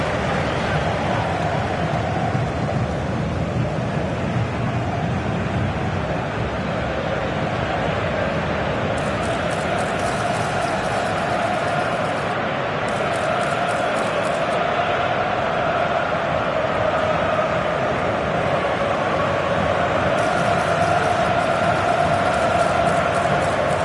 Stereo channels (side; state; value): both; identical; correlation 1.00